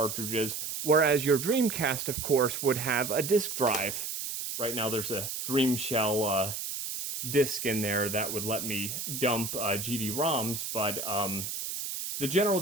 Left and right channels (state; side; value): noise; right; hiss, 5 dB below the sound